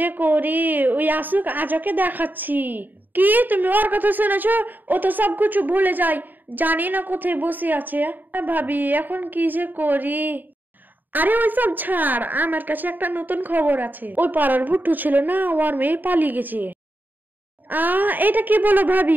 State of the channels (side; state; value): left; late; 0.089 ms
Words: করি, ওই আসুক, আজ ওকে দেখাচ্ছি। কি তুমি ওর কথা শুনেছো? ও তো সবকিছু ভুলে যায়, জানি না কোথায় বসে আছে। ভাবি এখন কি যে করি। আরে ওই সব ছাড়, আমার কাছে একটা নতুন খবর আছে। ওই পাড়ার ভুট্টু ছিল না, ওর মেয়ে পালিয়ে গেছে। এটা কি বলো